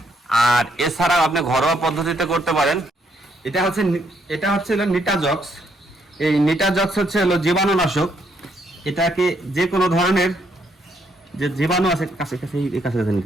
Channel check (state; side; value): normal; both; correlation 0.73